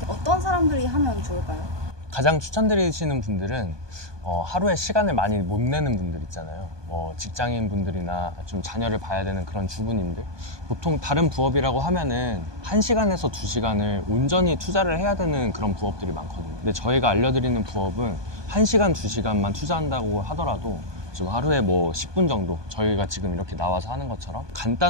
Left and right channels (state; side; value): late; left; 1.2 ms